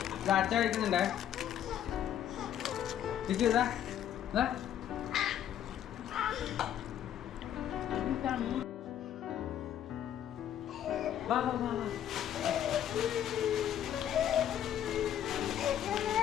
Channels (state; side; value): quieter; right; 10.4 dB